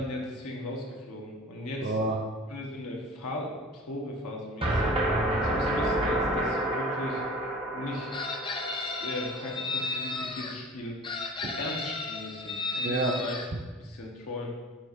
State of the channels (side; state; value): both; normal; correlation 0.40